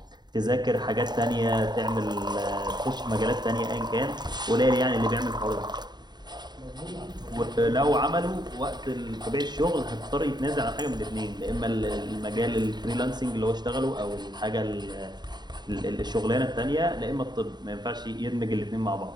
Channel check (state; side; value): late; left; 0.21 ms